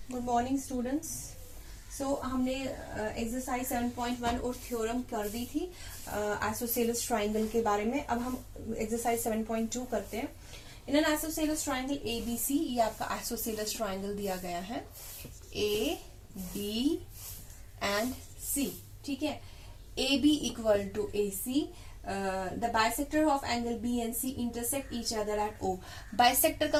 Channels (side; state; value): both; identical; correlation 1.00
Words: Morning students. सो हमने exercise 7.1 और theorem कर दी थी आइसोसेलेस ट्राइंगल के बारे में। अब हम एक्सरसाइज 7.2 करते हैं। In an isosceles triangle ABC, ये आपका आइसोसेलेस ट्राइंगल दिया गया है A, B एंड C। ठीक है, AB equal to AC, the bisector of angle B and C intersect each other at O। Bisector का